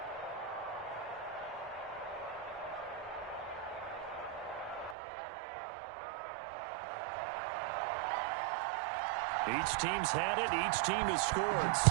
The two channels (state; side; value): drops out; left; at 5.0 s